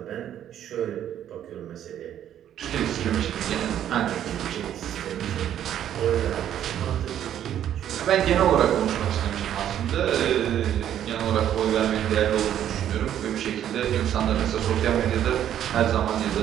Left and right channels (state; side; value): quieter; left; 10.6 dB